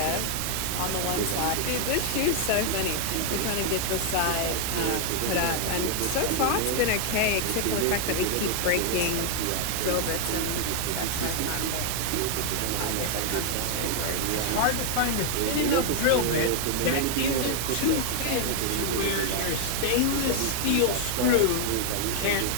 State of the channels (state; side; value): different; both; correlation 0.00